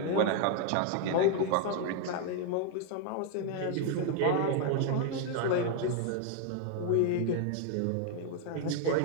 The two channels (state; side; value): different; both; correlation 0.00